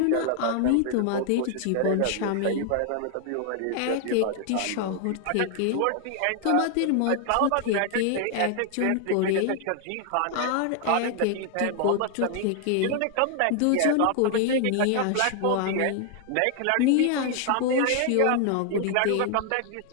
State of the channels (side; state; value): both; different; correlation 0.00